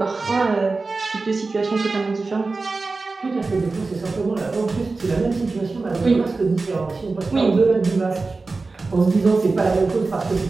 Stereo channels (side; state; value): left; quieter; 3.8 dB